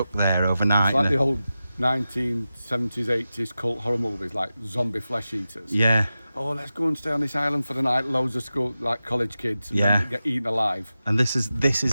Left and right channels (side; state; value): both; inverted; correlation -0.93